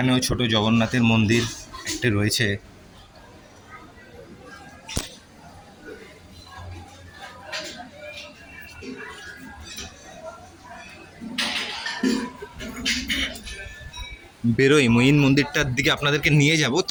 ছোট জগন্নাথের মন্দির একটা রয়েছে। বেরোই, মঈন মন্দিরটার দিকে আপনাদেরকে নিয়ে যাব।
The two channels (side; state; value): both; identical; correlation 1.00